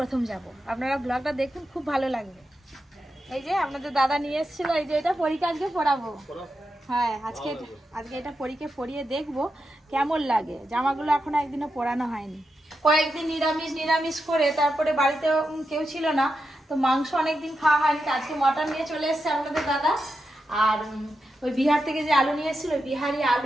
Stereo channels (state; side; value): normal; both; correlation 0.88